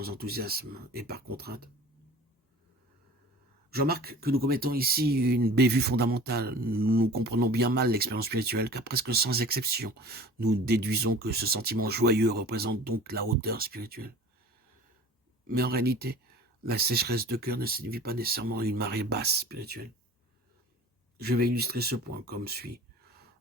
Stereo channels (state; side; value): normal; both; correlation 0.42